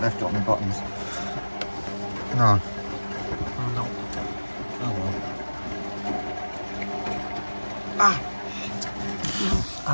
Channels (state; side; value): inverted; both; correlation -1.00